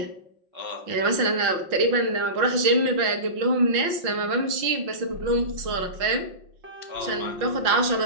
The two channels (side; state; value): left; late; 5.6 ms